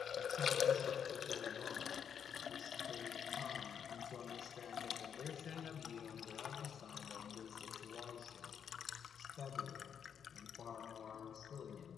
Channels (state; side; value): quieter; right; 7.9 dB